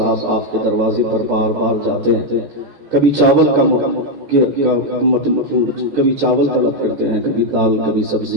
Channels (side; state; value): left; late; 14 ms